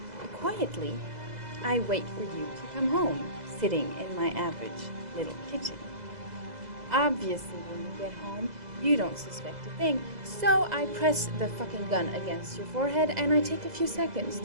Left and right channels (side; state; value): left; late; 2.0 ms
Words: quietly, I wait for you to come home, sitting in my average little kitchen. Obviously, when you get home, you don't suspect a thing, so I press the fucking gun against your forehead and I take a few seconds